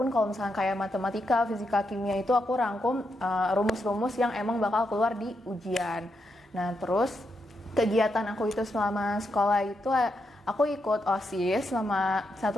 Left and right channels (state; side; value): normal; both; correlation 0.82